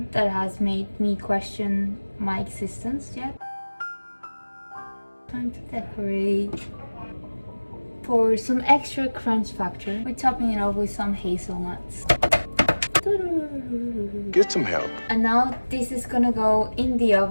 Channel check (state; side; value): inverted; both; correlation -1.00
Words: that has made me question my existence yet. Time to decorate. For some extra crunch factor, we're topping it off with some hazelnuts. Get some help. And now this is gonna go in the